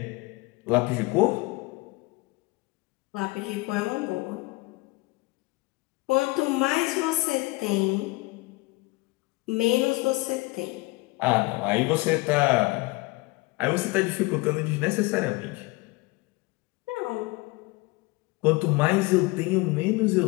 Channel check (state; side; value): quieter; right; 23.0 dB